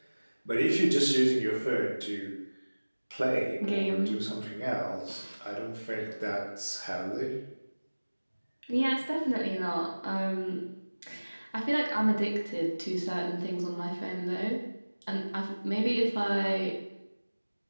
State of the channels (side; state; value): both; inverted; correlation -1.00